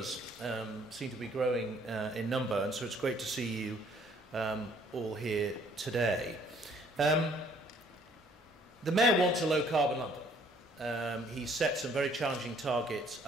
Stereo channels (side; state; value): both; normal; correlation 0.61